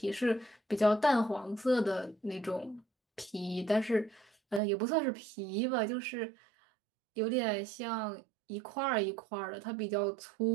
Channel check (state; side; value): drops out; left; at 4.6 s